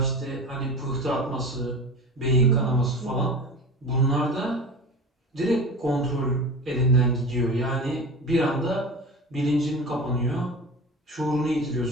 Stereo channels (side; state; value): both; normal; correlation 0.32